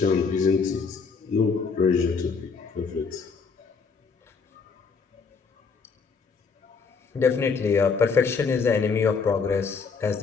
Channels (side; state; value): right; quieter; 5.2 dB